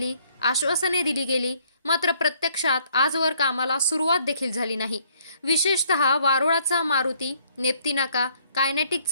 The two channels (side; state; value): both; inverted; correlation -0.65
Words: आश्वासने दिली गेली, मात्र प्रत्यक्षात आजवर कामाला सुरुवात देखील झाली नाही. विशेषतः वारोळाचा मारुती, नेप्ती नाका, कायनेटिक